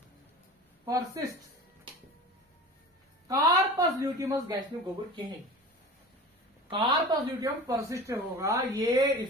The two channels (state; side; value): normal; both; correlation 0.36